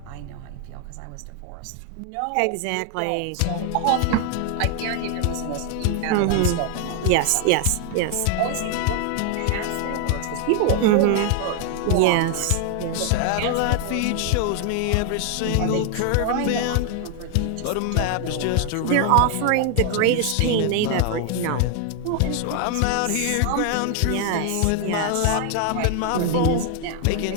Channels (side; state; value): both; different; correlation 0.00